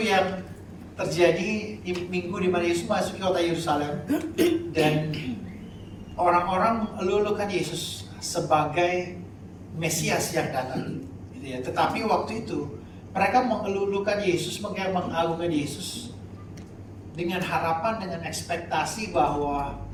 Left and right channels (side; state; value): both; identical; correlation 1.00